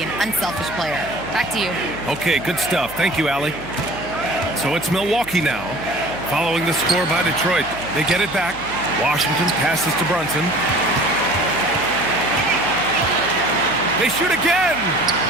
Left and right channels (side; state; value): right; noise; hum, 18 dB below the sound